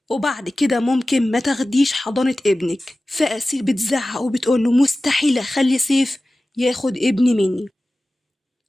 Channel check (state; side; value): normal; both; correlation 0.96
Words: وبعد كده ممكن ما تاخديش حضانة ابنك. فأسيل بتزعق وبتقوله مستحيل أخلي سيف ياخد ابني مني.